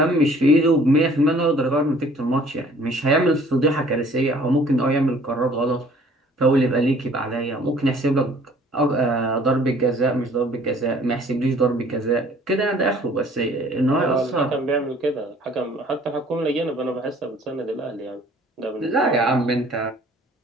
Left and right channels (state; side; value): normal; both; correlation 0.55